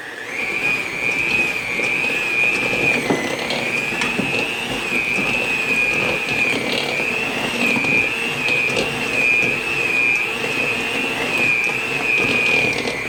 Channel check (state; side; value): identical; both; correlation 1.00